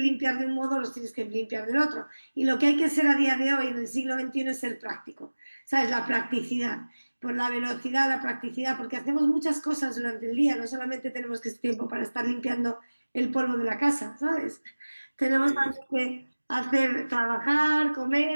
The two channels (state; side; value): inverted; both; correlation -1.00